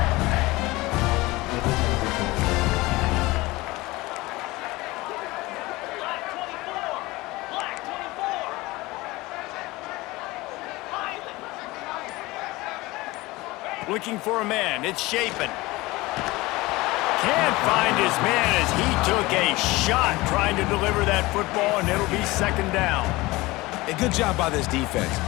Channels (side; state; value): right; quieter; 20.9 dB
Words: Looking for a man. It's Shapen. Can't find his man as he took a shot trying to deliver that football, and it'll be second down. A good job by this defense.